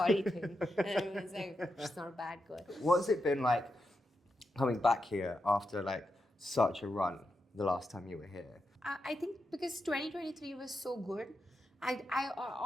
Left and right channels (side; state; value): both; normal; correlation 0.87